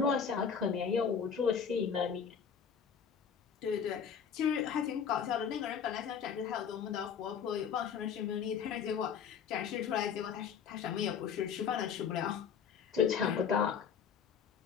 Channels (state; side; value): quieter; right; 7.1 dB